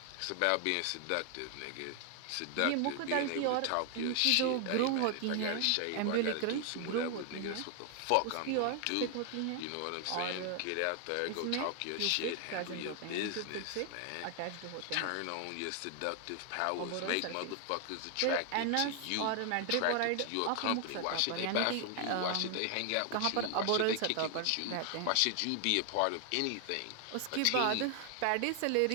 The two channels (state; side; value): different; both; correlation 0.00